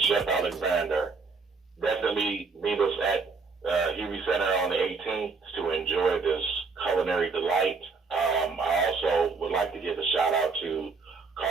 Chef Alexander. Definitely meet us at Hubie Center on the 18th to enjoy this culinary delight. I also would like to give a shout out to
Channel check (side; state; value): left; quieter; 4.6 dB